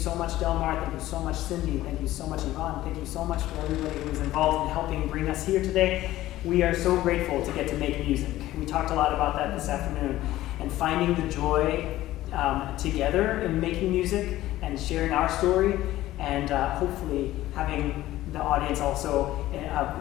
much, Delmar. Thank you so much, Cindy. Thank you so much, Yvonne. Thank you so much for everybody who was involved in helping bring us here today. We are so grateful to get to make music. We talked a lot about that this afternoon. And finding the joy together in making music and sharing our story, and hopefully having the audience also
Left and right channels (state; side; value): quieter; right; 15.4 dB